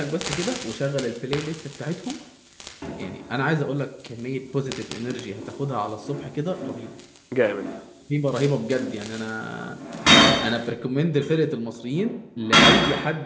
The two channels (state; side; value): identical; both; correlation 1.00